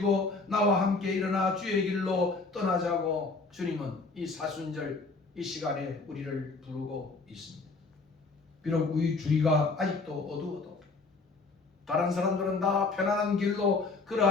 나와 함께 일어나 주의 길로 떠나자고 주님은 이 사순절 이 시간에 우리를 부르고 있습니다. 비록 우리 주위가 아직도 어두워도 다른 사람들은 다 편안한 길로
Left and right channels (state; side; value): quieter; right; 3.8 dB